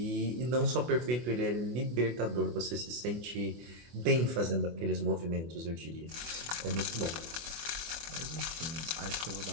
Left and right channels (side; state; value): left; late; 24 ms